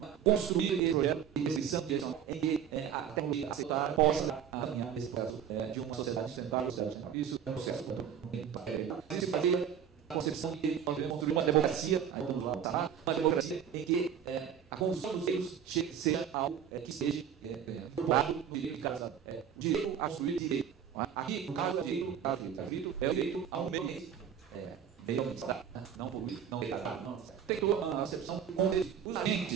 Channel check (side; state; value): left; quieter; 8.5 dB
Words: construir esse projeto de decisão direcional em que a tecnologia aceitar possa alinhar nesse processo de uma sociedade sustentável. Isso é um processo que fazer a concepção de que nós devemos construir uma democracia, uma democracia em que a construção dos direitos seja algo que seja formado no direito de cada o direito a construir direito. Aqui, no caso do direito, é o direito a um meio ambiente. Não poluir, não degradar, não. Tem toda uma acepção com os